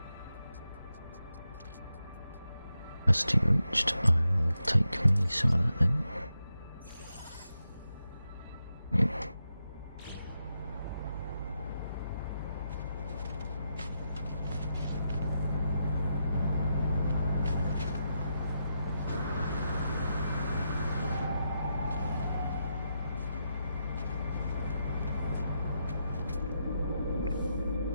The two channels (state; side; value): inverted; both; correlation -0.85